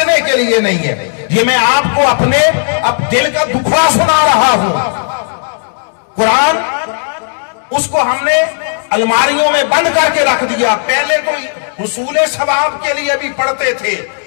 کے لیے نہیں ہے۔ یہ میں آپ کو اپنے دل کا دکھڑا سنا رہا ہوں۔ قرآن اس کو ہم نے الماریوں میں بند کر کے رکھ دیا۔ پہلے کوئی حصول ثواب کے لیے بھی پڑھتے تھے،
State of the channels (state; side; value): silent; right; digital silence